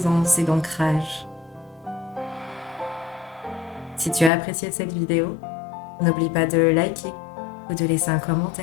et d'ancrage. Si tu as apprécié cette vidéo, n'oublie pas de liker ou de laisser un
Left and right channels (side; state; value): right; drops out; at 4.3 s